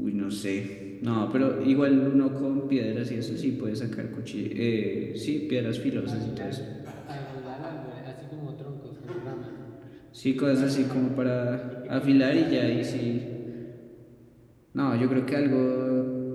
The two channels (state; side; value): identical; both; correlation 1.00